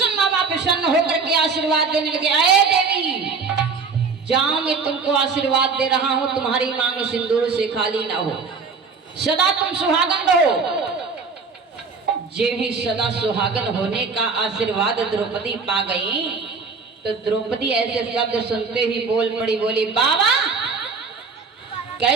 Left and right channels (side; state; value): left; quieter; 4.8 dB